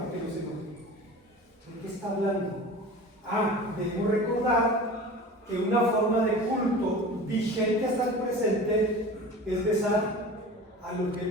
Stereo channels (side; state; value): both; normal; correlation 0.37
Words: que no se enoje. ¿De qué está hablando? Debemos recordar que una forma de culto vigente hasta el presente es besar al